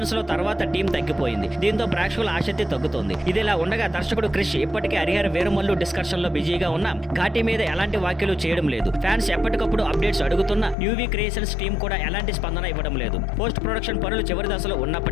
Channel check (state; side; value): drops out; right; at 10.8 s